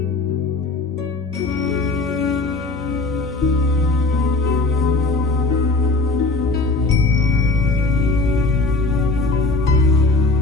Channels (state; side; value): quieter; right; 3.4 dB